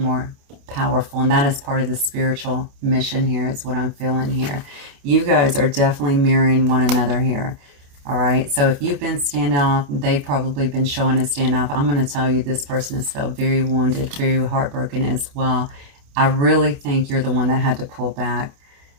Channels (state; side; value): late; left; 28 ms